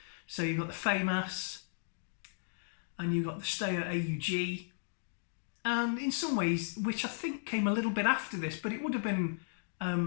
So you've got the FAMAS, and you've got the Steyr AUG, and in some ways, which I think came a little bit after this, but it would have been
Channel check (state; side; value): silent; right; digital silence